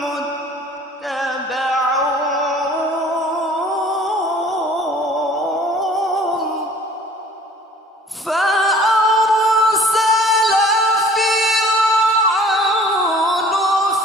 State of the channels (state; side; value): normal; both; correlation 0.50